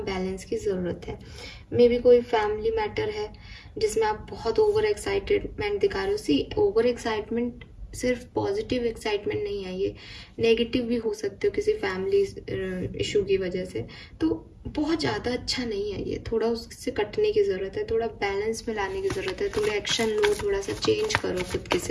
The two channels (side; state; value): both; identical; correlation 1.00